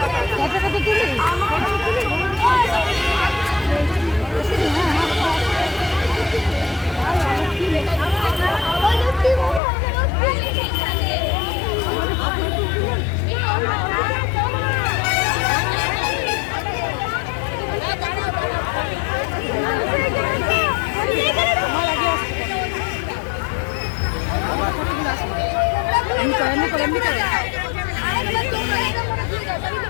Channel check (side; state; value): right; drops out; at 9.6 s